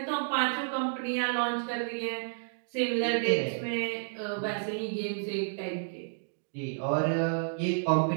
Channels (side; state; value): left; silent; digital silence